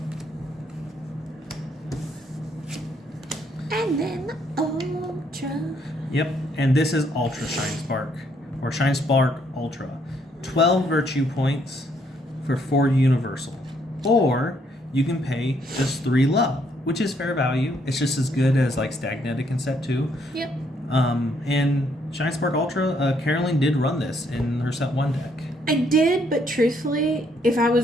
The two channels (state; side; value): normal; both; correlation 0.70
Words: And then the Ultra. Yep, and this is Ultra Shine Spark, or Shine Spark Ultra. 12 virtue points for 4 universal. Or you can pay just 3 love, which is fair value. It's just as good as like Stagnetic in set 2. Yep. And Shine Spark Ultra, Carolyn did run this in her set 1 deck. I did, but truthfully, if I